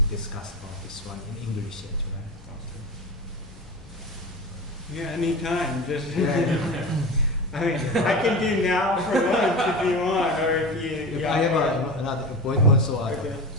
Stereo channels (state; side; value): normal; both; correlation 0.28